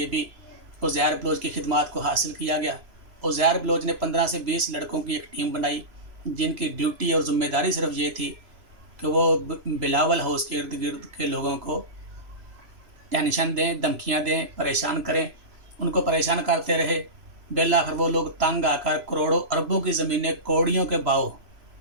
भी उज़ैर बलोच की खिदमात को हासिल किया गया। उज़ैर बलोच ने 15 से 20 लड़कों की एक टीम बनाई, जिनकी ड्यूटी और ज़िम्मेदारी सिर्फ ये थी कि वो बिलावल हाउस के इर्द गिर्द के लोगों को टेंशन दें, धमकियाँ दें, परेशान करें। उनको परेशान करते रहे। बिलाखिर वो लोग तंग आकर करोड़ों अरबों की ज़मीनें कौड़ियों के भाव,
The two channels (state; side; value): late; left; 3.0 ms